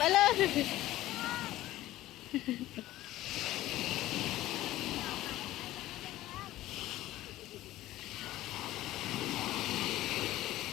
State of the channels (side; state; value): right; quieter; 15.6 dB